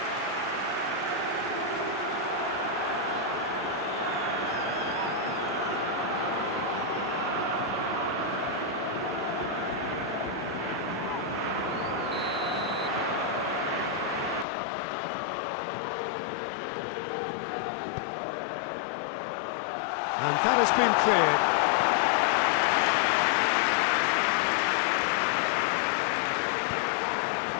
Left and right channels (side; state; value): right; drops out; at 14.5 s